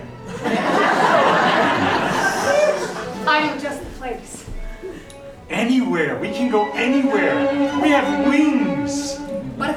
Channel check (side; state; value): both; identical; correlation 1.00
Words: I know just the place. Anywhere. We can go anywhere. We have wings. But